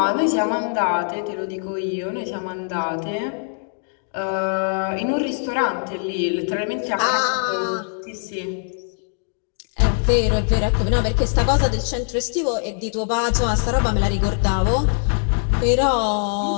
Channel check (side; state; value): right; silent; 60 dB below the other